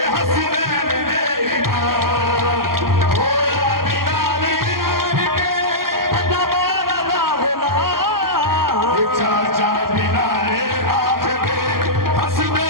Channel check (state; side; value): late; left; 0.92 ms